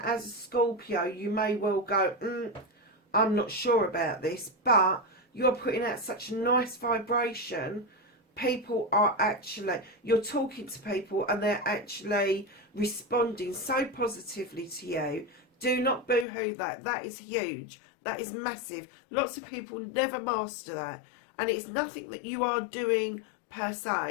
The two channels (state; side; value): drops out; right; at 16.2 s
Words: as a Scorpio, you may well go, I'm not sure about this, but you're putting out such a nice vibration. People are actually, you're talking to people and they're actually responding so positively to you. Do not boo-hoo that. That is huge. That is massive. Lots of people never master that. And it's nothing that you are doing per